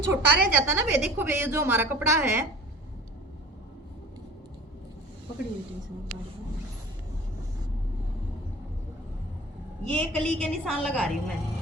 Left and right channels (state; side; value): normal; both; correlation 0.41